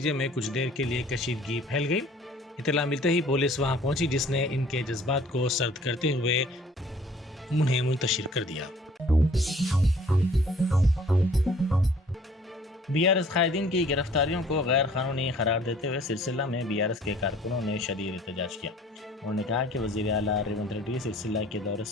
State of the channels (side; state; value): both; normal; correlation 0.54